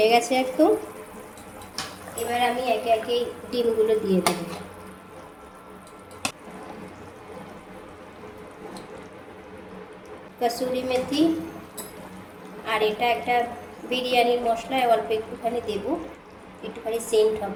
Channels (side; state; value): both; identical; correlation 1.00